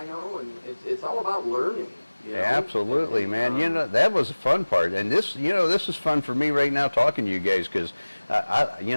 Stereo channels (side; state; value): both; inverted; correlation -1.00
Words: and it's all about learning. You know? absolutely, man. You know, that was the fun part, and this, you know, this is fun for me right now talking to you guys because,